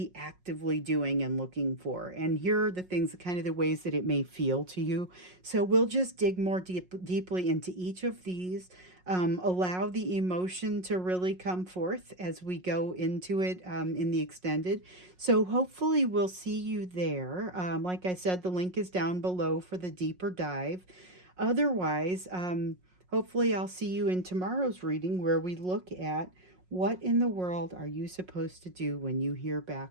actively doing and looking for. And here are the things, kind of the ways that it may feel to you. So we'll just dig more deeply into each of these. Allow the emotion to really come forth as we go into it in the extended. So hopefully we'll see you there. Like I said, the link is down below for the deeper dive. Otherwise, hopefully I'll see you in tomorrow's reading where we look at what in the world are you supposed to do when you hear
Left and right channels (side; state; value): left; late; 5.5 ms